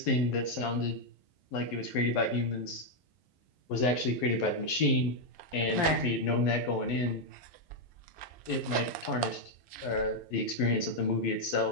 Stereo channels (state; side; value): late; right; 11 ms